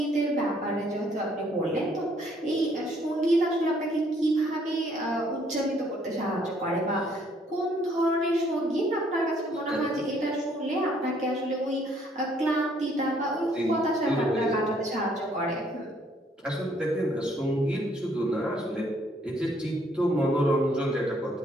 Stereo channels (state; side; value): normal; both; correlation 0.65